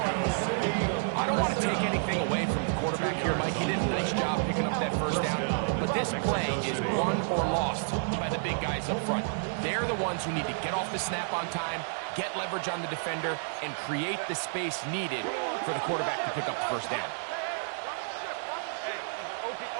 I don't want to take anything away from the quarterback here, Mike. He did a nice job picking up that first down. But this play is won or lost by the big guys up front. They're the ones who need to get off the snap on time, get leverage on the defender, and create the space needed for the quarterback to pick up the first down.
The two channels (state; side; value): silent; left; digital silence